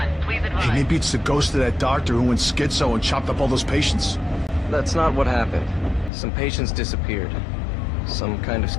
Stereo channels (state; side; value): drops out; right; at 6.1 s